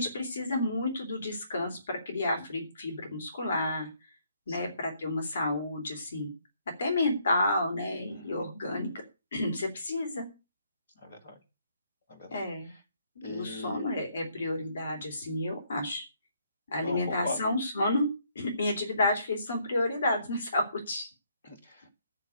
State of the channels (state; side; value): inverted; both; correlation -0.69